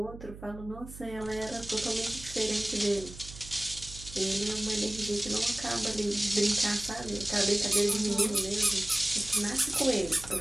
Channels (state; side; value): noise; right; hum, 14 dB below the sound